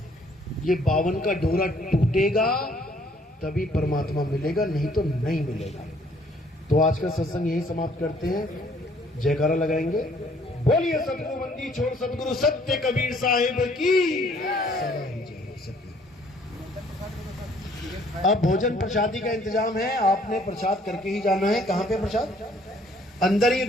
ये 52 का डोरा टूटेगा तभी परमात्मा मिलेगा, नहीं तो नहीं मिलेगा। तो आज का सत्संग यही समाप्त करते हैं। जयकारा लगाएंगे। बोलिए सतगुरु बंदी छोड़ सतगुरु सत्य कबीर साहिब की सदा ही जय सतगुरु। अब भोजन प्रसादी का इंतजाम है, आपने प्रसाद करके ही जाना है। कहाँ पे प्रसाद? अंदर ही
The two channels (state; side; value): normal; both; correlation 0.61